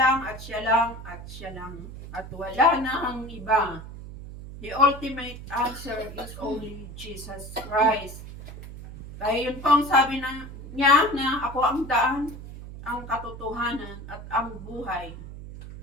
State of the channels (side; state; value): right; noise; hum, 12 dB below the sound